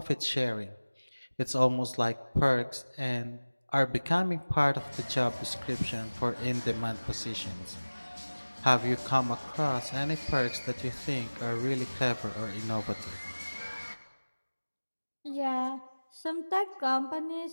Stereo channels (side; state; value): both; inverted; correlation -1.00